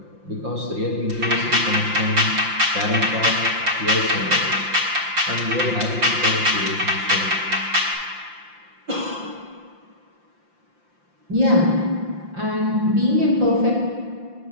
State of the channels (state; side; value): late; left; 5.8 ms